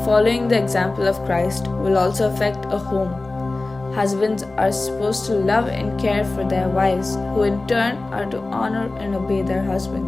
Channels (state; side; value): quieter; right; 3.2 dB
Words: following the example of Christ, will also affect a home. Husbands are supposed to love and care for their wives, who in turn are to honor and obey their